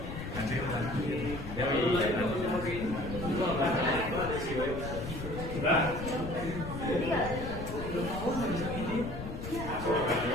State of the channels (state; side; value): noise; left; rumble, 8 dB below the sound